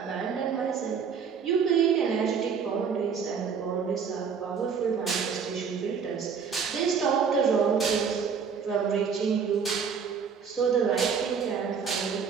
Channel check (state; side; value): quieter; left; 6.3 dB